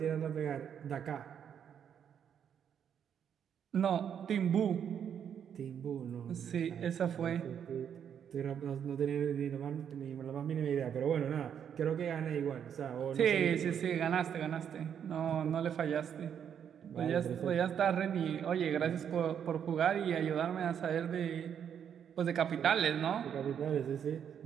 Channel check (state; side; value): quieter; left; 8.4 dB